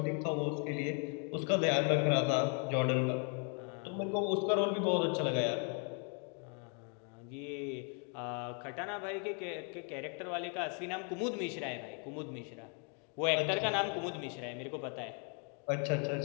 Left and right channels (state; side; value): quieter; right; 38.7 dB